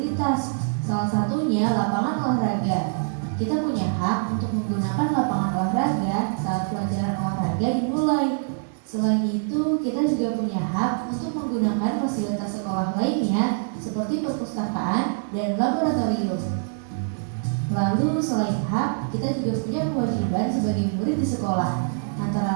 salah satunya lapangan olahraga. Kita punya hak untuk menggunakan lapangan olahraga saat pelajaran olahraga dimulai. Selain itu, kita juga punya hak untuk menggunakan fasilitas sekolah lainnya seperti perpustakaan dan laboratorium. Lalu selain hak, kita juga punya kewajiban sebagai murid di sekolah,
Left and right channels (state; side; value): silent; left; digital silence